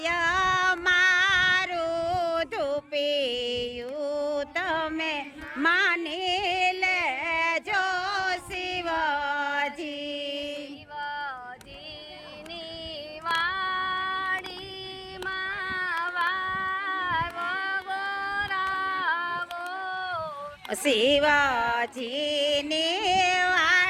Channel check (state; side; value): identical; both; correlation 1.00